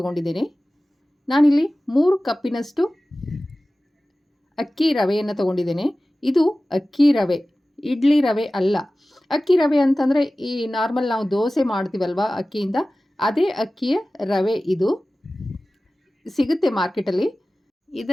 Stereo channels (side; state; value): both; normal; correlation 0.97